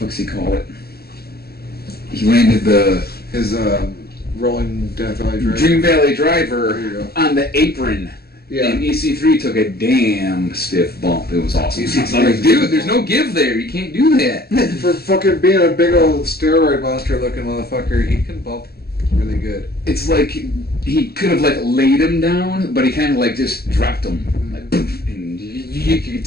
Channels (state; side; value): late; right; 0.46 ms